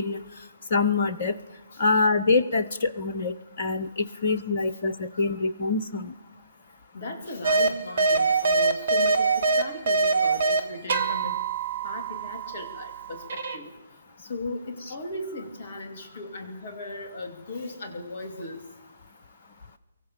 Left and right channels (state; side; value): inverted; both; correlation -0.62